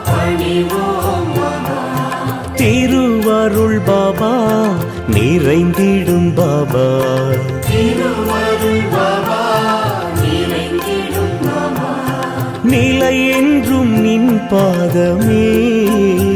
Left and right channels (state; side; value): identical; both; correlation 1.00